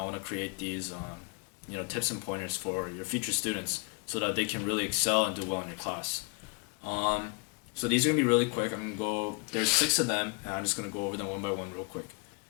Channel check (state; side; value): quieter; right; 32.4 dB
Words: want to create these tips and pointers for your future students so that they can really excel and do well in your class. Um, so these are going to be really quick. I'm going to go, there's six of them, and I'm just going to go over them one by one real quick.